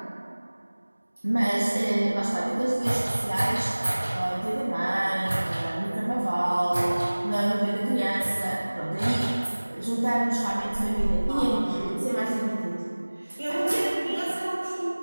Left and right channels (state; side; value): inverted; both; correlation -1.00